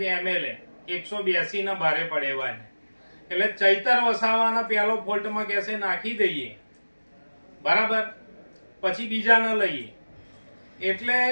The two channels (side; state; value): both; inverted; correlation -1.00